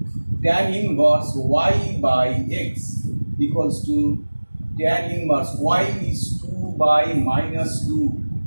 tan inverse y by x equals to tan inverse y is 2 by minus 2,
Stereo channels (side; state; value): both; inverted; correlation -1.00